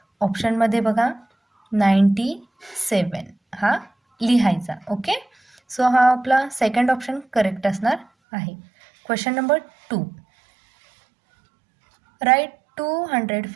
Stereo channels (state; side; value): drops out; left; at 8.1 s